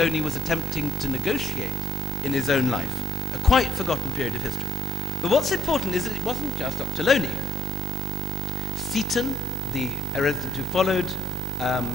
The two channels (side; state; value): both; normal; correlation 0.68